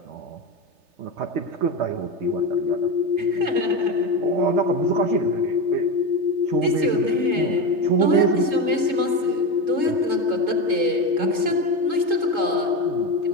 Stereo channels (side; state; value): left; late; 3.3 ms